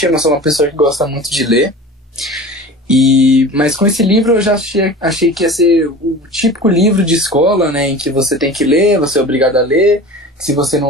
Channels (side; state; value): both; normal; correlation 0.37